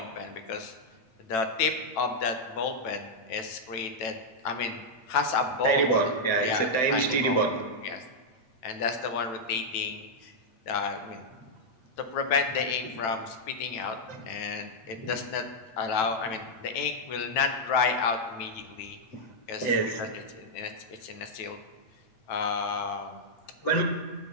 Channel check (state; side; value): late; right; 9.0 ms